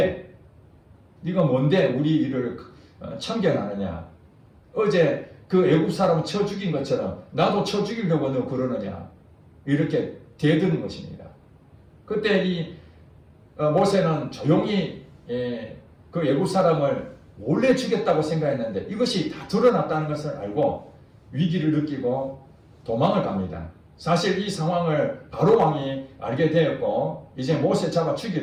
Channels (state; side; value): identical; both; correlation 1.00